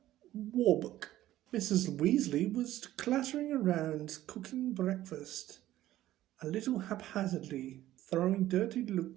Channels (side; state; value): left; quieter; 14.3 dB